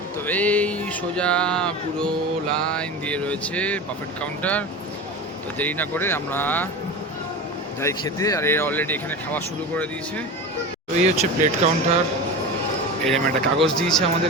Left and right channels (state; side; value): normal; both; correlation 0.28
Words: তো এই সোজা পুরো লাইন দিয়ে রয়েছে বাফেট কাউন্টার। তো দেরি না করে আমরা যাই খেতে, আর এরা অলরেডি এখানে খাওয়া শুরু করে দিয়েছে। তো এই হচ্ছে প্লেট কাউন্টার, এরকম একটা কাগজ দিয়েছে